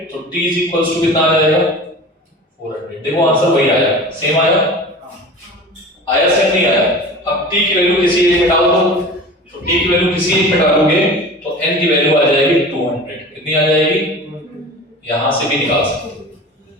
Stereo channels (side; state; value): both; normal; correlation 0.37